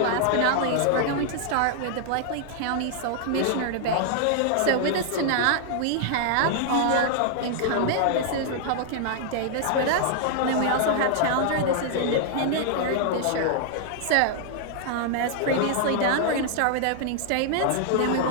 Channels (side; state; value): both; different; correlation -0.01